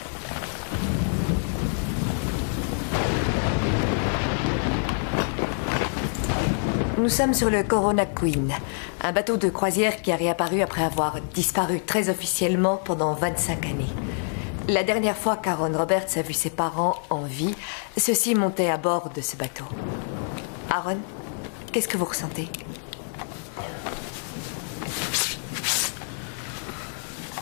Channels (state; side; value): silent; right; 61 dB below the other